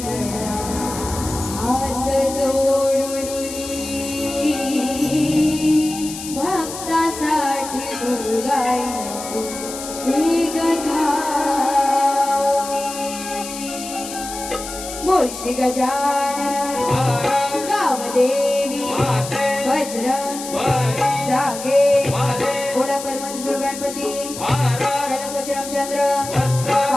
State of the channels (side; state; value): left; noise; hiss, 10 dB below the sound